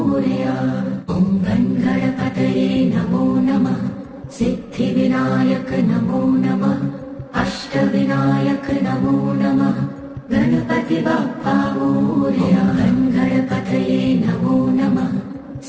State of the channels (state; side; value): identical; both; correlation 1.00